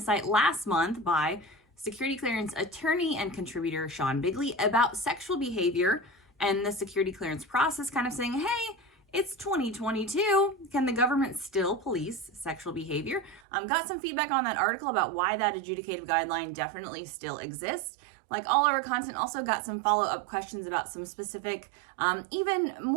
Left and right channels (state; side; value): drops out; left; at 13.4 s